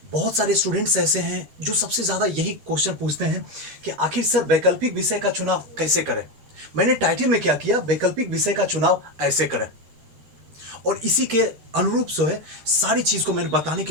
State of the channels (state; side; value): late; left; 13 ms